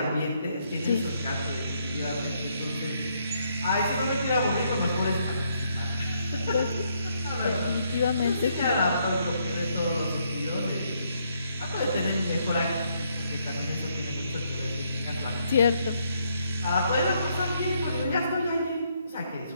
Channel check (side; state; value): both; inverted; correlation -0.74